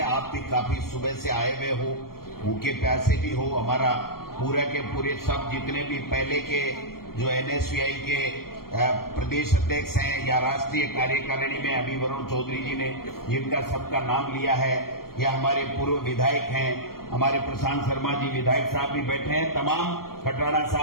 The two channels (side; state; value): right; late; 0.93 ms